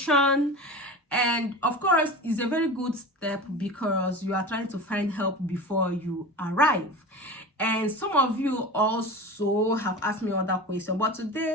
And of course, it's a very good step because you are trying to find help before you arrive. And some of you also have asked me other questions, but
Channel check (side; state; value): both; normal; correlation 0.31